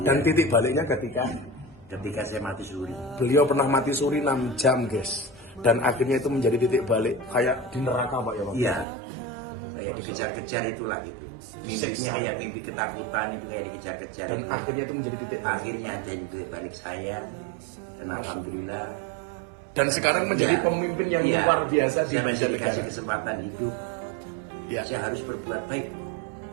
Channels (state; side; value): drops out; left; at 8.8 s